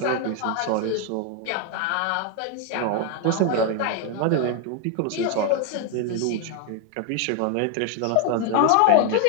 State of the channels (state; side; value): different; both; correlation 0.00